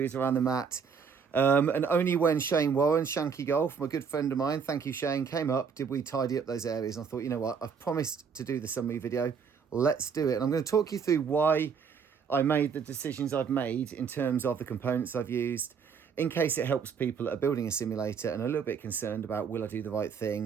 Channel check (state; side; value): quieter; left; 6.3 dB